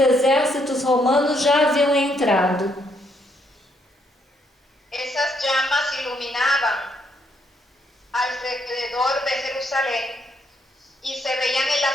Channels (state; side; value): normal; both; correlation 0.73